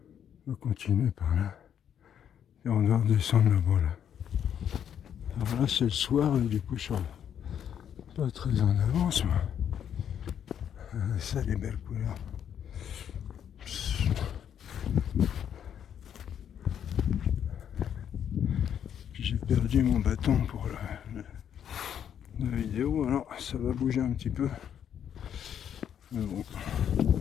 On va continuer par là. Et on doit redescendre là-bas, là. Alors là, c'est le soir, et du coup, je suis pas très en avance, moi. Ça, les belles couleurs. J'ai perdu mon bâton pour la vidéo, alors ça va bouger un petit peu. Mais bon,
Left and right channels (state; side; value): quieter; right; 9.0 dB